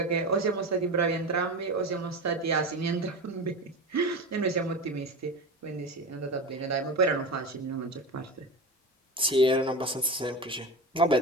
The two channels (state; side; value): normal; both; correlation 0.25